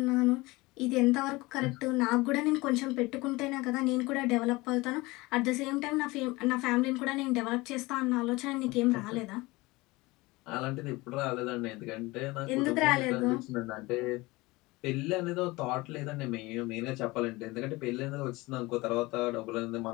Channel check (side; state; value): right; quieter; 21.9 dB